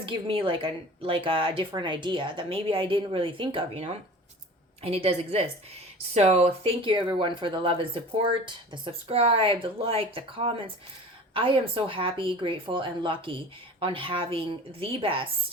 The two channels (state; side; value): normal; both; correlation 0.40